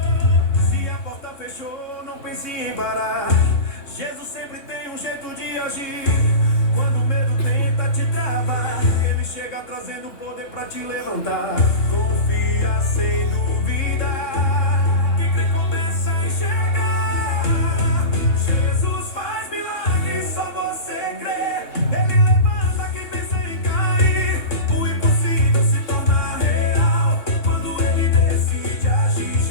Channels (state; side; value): late; right; 3.7 ms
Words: Se a porta fechou, não pense em parar. Jesus sempre tem um jeito de agir. Quando o medo tenta te travar, ele chega trazendo poder pra te levantar. Confia sem dúvida. Quem crê começa a enxergar. Jesus faz milagres, só você crê. Ele levanta quem pensa em cair. O impossível se torna real quando ele decide agir.